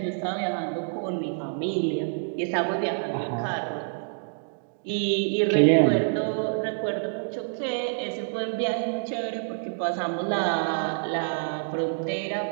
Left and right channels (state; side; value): silent; left; digital silence